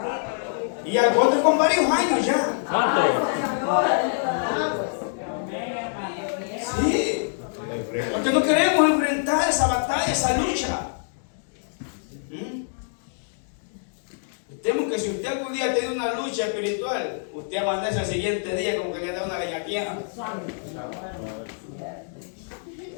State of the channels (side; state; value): right; silent; digital silence